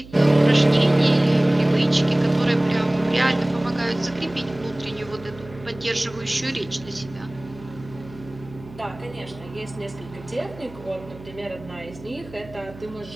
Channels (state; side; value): noise; right; hum, 18 dB below the sound